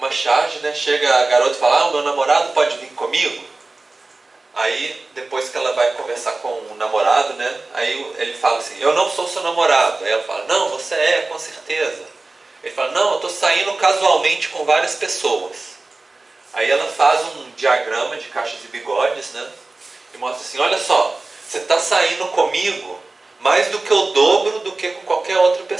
charge, né? Chega a garota e fala, o meu namorado pode vir comigo? Aí, depois que ela vai conversar com o namorado, né? Aí ele fala assim, eu não sou seu namorado. Aí ela fala, não, você é, com certeza. Ele fala, não, eu estou saindo casualmente com várias pessoas. Aí ela faz um diagrama de caixas e bigodes, né? E mostra assim, olha só, você está saindo comigo mais do que o dobro do que com qualquer outra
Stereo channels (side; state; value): left; quieter; 3.3 dB